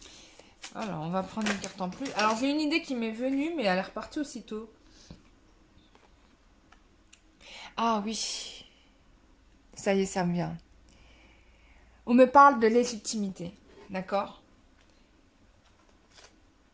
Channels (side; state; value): both; identical; correlation 1.00